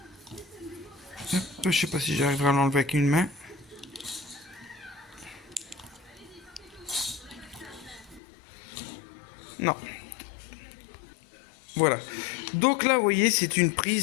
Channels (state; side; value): drops out; right; at 8.2 s